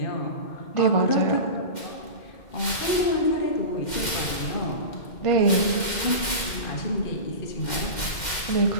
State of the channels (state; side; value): late; right; 2.1 ms